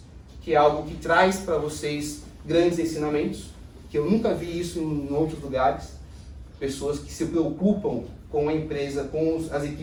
que é algo que traz para vocês grandes ensinamentos, que eu nunca vi isso em outros lugares. Pessoas que se preocupam com a empresa, com as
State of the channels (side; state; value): both; identical; correlation 1.00